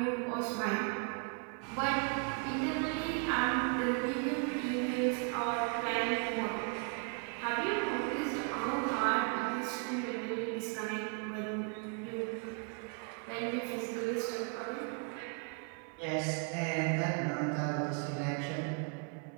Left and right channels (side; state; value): left; quieter; 37.7 dB